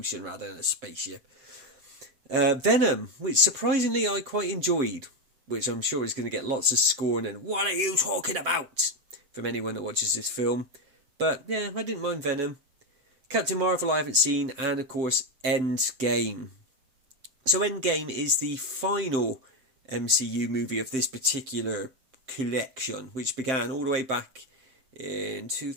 rather than a spaceship. Venom, which surprisingly I quite enjoyed. Which I'm sure is going to get lots of scorn and, "What are you talking about?" from anyone that watches this film. But yeah, I didn't mind Venom. Captain Marvel I haven't seen, and of course Endgame. So Endgame is the final MCU movie of this particular collection, which began all the way back in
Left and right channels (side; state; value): left; late; 7.7 ms